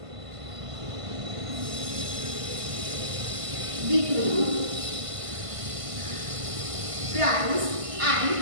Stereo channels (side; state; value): left; late; 1.5 ms